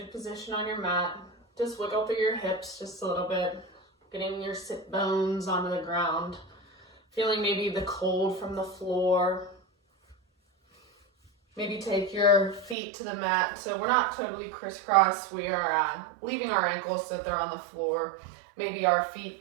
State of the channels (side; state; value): left; drops out; at 12.8 s